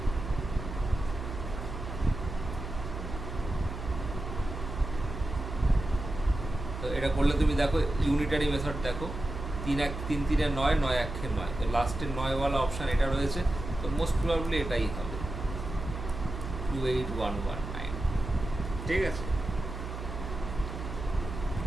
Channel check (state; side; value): noise; right; hum, 7 dB below the sound